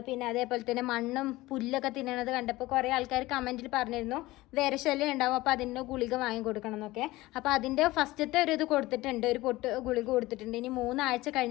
പിന്നെ അതേപോലെ തന്നെ മണ്ണും പുല്ലൊക്കെ തിന്നണത് കണ്ടപ്പോൾ കുറേ ആൾക്കാർ കമൻറ്റിൽ പറഞ്ഞിരുന്നു വിരശല്യം ഉണ്ടാവും, അപ്പോൾ അതിൻ്റെ ഗുളിക വാങ്ങി കൊടുക്കണം എന്നൊക്കെ. അപ്പോൾ അതിൻ്റെ ഫസ്റ്റത്തെ ഒരു ഇത് കൊടുത്തിട്ടുണ്ട്, ഒരു പൊട്ട് ഗുളിക കൊടുത്തിട്ടുണ്ട്. ഇനി 3 ആഴ്ച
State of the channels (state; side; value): quieter; right; 18.9 dB